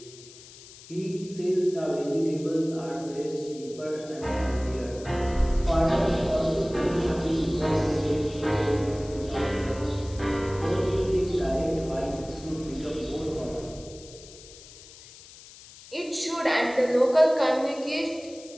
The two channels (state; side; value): noise; left; hiss, 19 dB below the sound